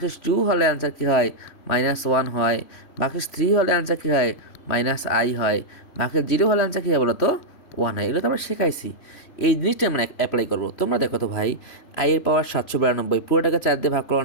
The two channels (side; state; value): right; late; 3.1 ms